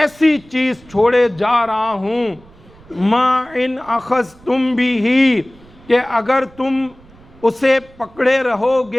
چیز چھوڑے جا رہا ہوں، ما ان اخذتم بھی، کہ اگر تم اسے پکڑے رہو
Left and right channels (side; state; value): right; noise; rumble, 25 dB below the sound